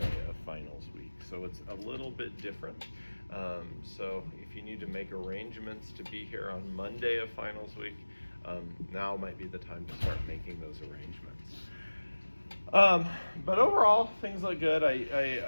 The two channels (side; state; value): both; inverted; correlation -1.00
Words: of finals week. So it's a little bit different. So if you need to make arrangements to be here on Monday of finals week, now might be the time to start making those arrangements. But overall, things look good.